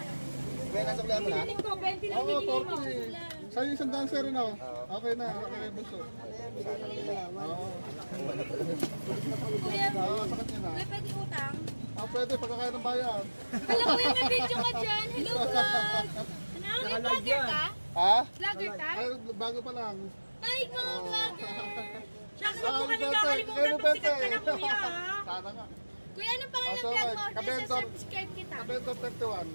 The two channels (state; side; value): inverted; both; correlation -1.00